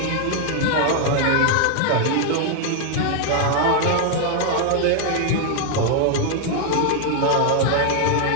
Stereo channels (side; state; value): both; different; correlation 0.00